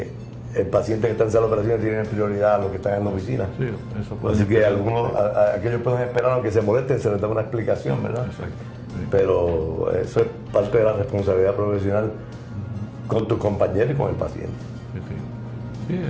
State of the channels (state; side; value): identical; both; correlation 1.00